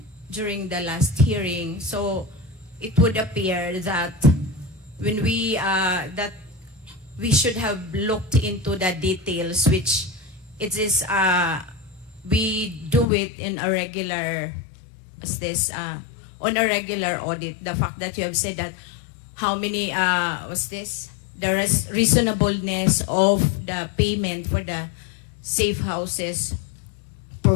during the last hearing, so it would appear that when we should have looked into the details, which it is we do it in a regular on a regular audit. The fact that you have said that how many there is reasonableness of the payment for the safe houses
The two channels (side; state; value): right; drops out; at 13.1 s